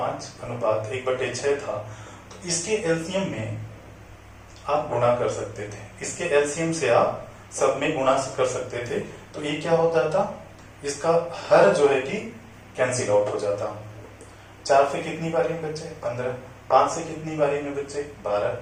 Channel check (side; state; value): both; identical; correlation 1.00